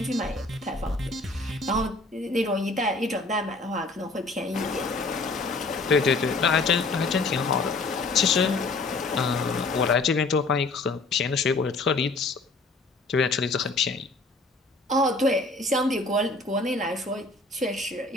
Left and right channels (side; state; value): right; quieter; 3.3 dB